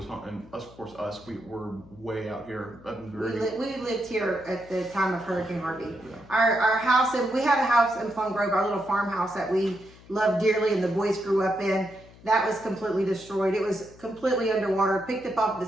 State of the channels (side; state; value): left; noise; hum, 22 dB below the sound